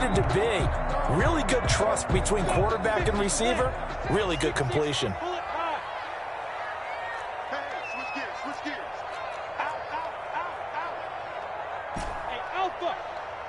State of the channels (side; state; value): both; identical; correlation 1.00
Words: to be. Really good trust between quarterback and receiver. Really good completion.